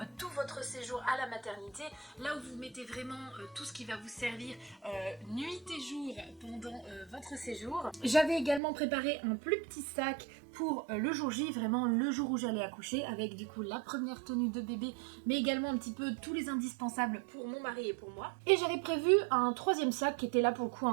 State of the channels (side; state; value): left; drops out; at 8.6 s